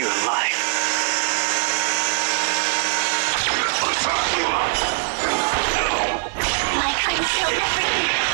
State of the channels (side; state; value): left; silent; 59 dB below the other